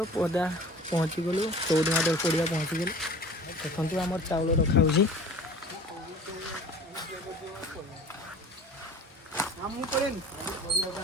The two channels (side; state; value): both; normal; correlation 0.43